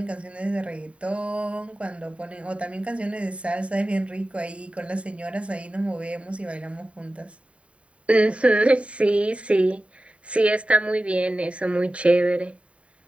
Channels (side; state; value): left; late; 0.063 ms